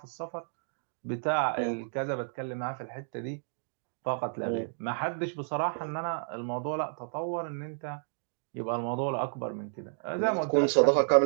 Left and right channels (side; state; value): left; silent; digital silence